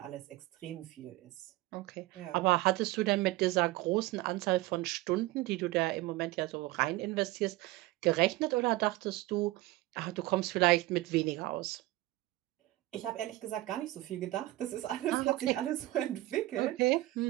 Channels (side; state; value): left; quieter; 18.3 dB